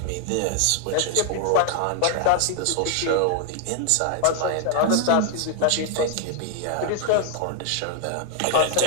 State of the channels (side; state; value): both; different; correlation 0.00